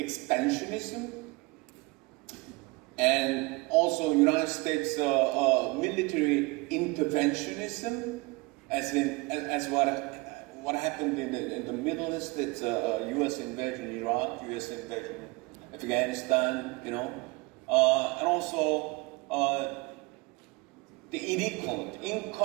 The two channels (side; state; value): left; quieter; 25.1 dB